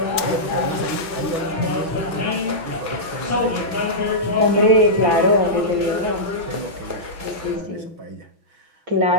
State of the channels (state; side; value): late; left; 5.4 ms